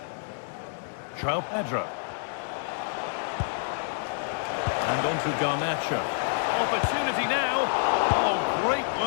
João Pedro. And on to Garnacho. Opportunity now. Oh, great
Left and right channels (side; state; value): right; silent; digital silence